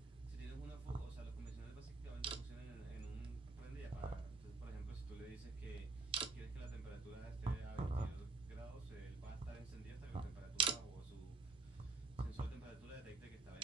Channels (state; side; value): quieter; left; 3.8 dB